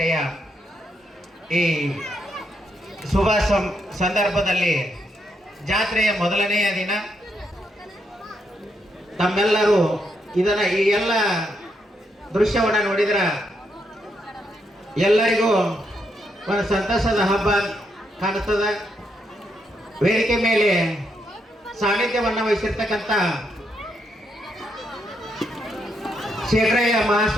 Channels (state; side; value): normal; both; correlation 0.79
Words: ಈ ಶುಭ ಸಂದರ್ಭದಲ್ಲಿ ಜಾತ್ರೆಯ ಮೊದಲನೆಯ ದಿನ ತಮ್ಮೆಲ್ಲರೂ ಇದನ್ನ ಈ ಎಲ್ಲ ದೃಶ್ಯವನ್ನು ನೋಡಿದ್ರೆ ಎಲ್ಲರಿಗೂ ಒಂದು ಸಂತಸದ ಹಬ್ಬ ಕಾಣಿಸ್ತದೆ. ವೇದಿಕೆ ಮೇಲೆ ಸಾನ್ನಿಧ್ಯವನ್ನು ವಹಿಸಿರ್ತಕ್ಕಂಥ ಶೇಖರಯ್ಯ